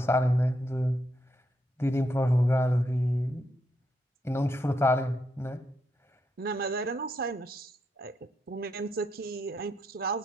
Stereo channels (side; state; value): both; normal; correlation 0.80